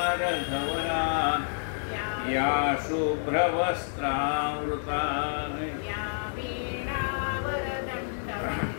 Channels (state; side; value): silent; right; 59 dB below the other